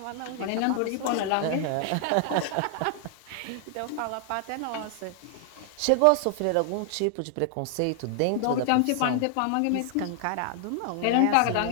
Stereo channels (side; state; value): both; different; correlation 0.00